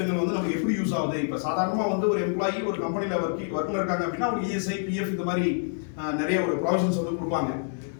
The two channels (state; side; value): silent; right; digital silence